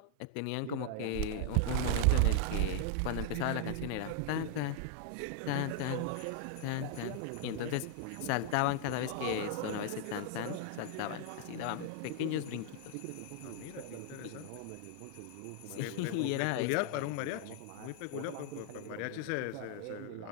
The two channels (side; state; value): both; different; correlation 0.00